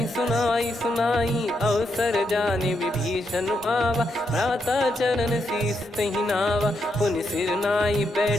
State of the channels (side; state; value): both; normal; correlation 0.81